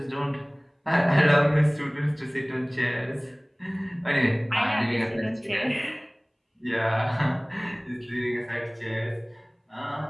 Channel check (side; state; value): both; identical; correlation 1.00